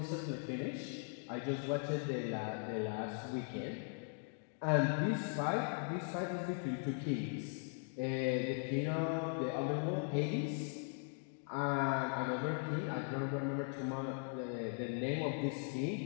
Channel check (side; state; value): right; silent; 51 dB below the other